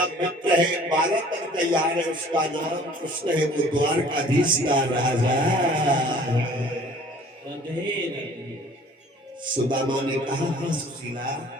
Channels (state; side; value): normal; both; correlation 0.51